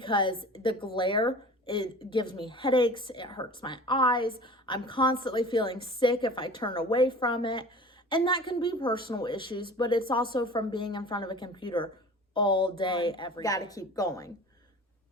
the glare, it gives me headaches, it hurts my eyes. I'm constantly feeling sick if I turn away from it. And that can be personal issues, but it's also from being in front of a computer all day, every day. Gotta keep going.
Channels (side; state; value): both; normal; correlation 0.40